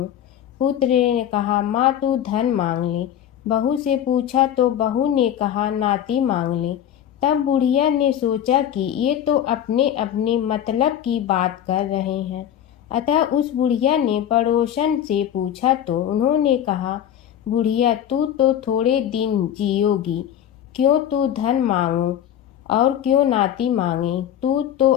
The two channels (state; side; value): quieter; right; 10.4 dB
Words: पुत्र ने कहा, माँ तू धन मांग ले। बहू से पूछा तो बहू ने कहा, नाती मांग ले। तब बुढ़िया ने सोचा कि ये तो अपने अपने मतलब की बात कर रहे हैं। अतः उस बुढ़िया ने पड़ोसन से पूछा तो उन्होंने कहा, बुढ़िया तू तो थोड़े दिन जियोगी, क्यों तू धन मांगो और क्यों नाती मांगे? तू तो